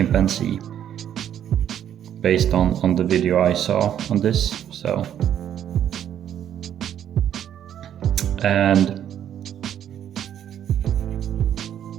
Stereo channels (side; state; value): left; quieter; 10.1 dB